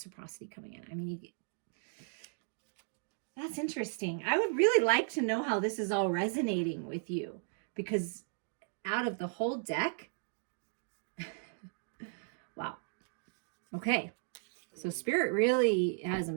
coming in. I mean, that's interesting. I would really like to know how this is all resonating with you, because out of the whole deck, wow. Okay. So Spirit really has a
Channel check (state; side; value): silent; left; digital silence